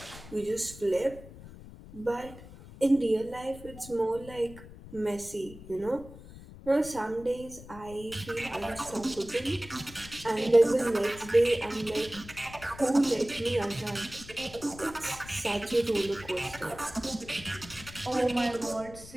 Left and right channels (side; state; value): left; noise; rumble, 16 dB below the sound